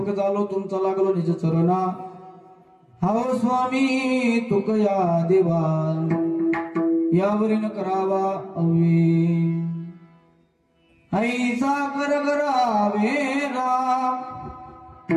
झालो तुमचा लागलो निज चरणा हाव स्वामी तुकया देवा यावरीन करावा अवे ऐसा कर करावे राम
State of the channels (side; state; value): both; identical; correlation 1.00